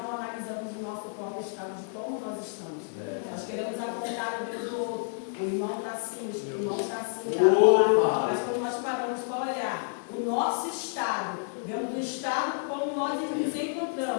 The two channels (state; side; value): silent; right; digital silence